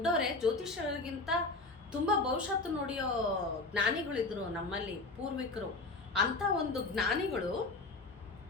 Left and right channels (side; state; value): right; quieter; 3.3 dB